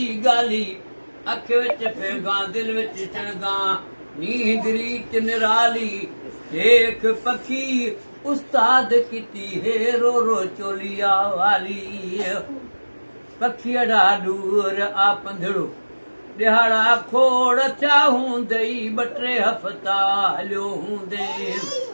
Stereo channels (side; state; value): both; inverted; correlation -1.00